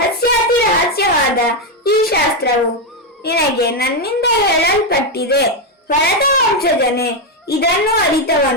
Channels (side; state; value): both; normal; correlation 0.05